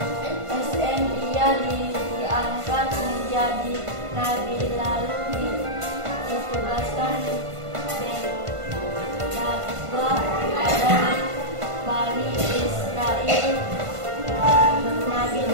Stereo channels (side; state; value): left; late; 1.5 ms